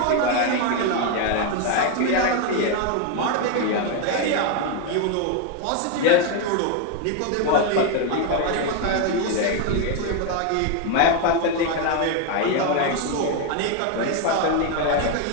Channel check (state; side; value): different; both; correlation 0.01